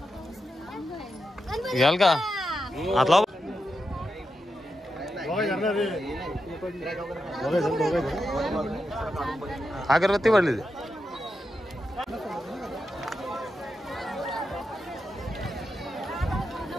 घ्याल का आतला अगरबत्ती पडली.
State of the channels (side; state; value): both; normal; correlation 0.87